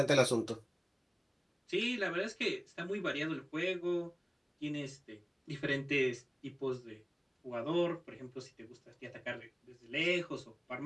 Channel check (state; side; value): identical; both; correlation 1.00